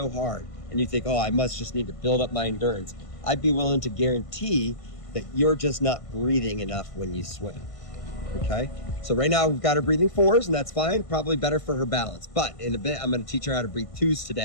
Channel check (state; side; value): late; right; 1.5 ms